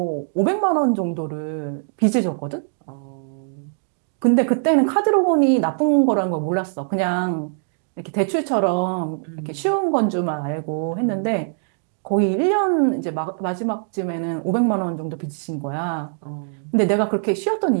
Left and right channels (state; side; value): silent; left; digital silence